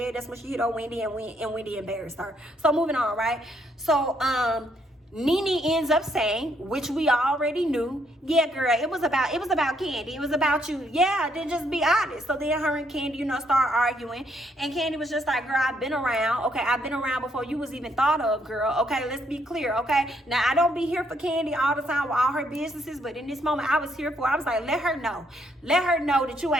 that's when she hit on Wendy, and Wendy embarrassed her. So moving on, right? So Nene ends up saying, which we already knew, yeah, girl, it was about Kandi. It was about you. Yeah, then just be honest. So then her and Kandi, start arguing. And Kandi was just like, girl, I've been around. Okay, I've been around before you was even thought of, girl. Okay, let's be clear, okay? Now, I don't be here for Kandi all the time with all her businesses, but in this moment, I was here for, I was like, let her know. Let her know that you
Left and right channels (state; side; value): normal; both; correlation 0.72